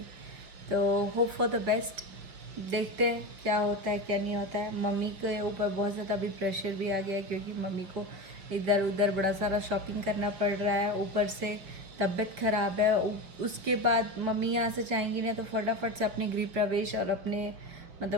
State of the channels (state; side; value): late; left; 6.0 ms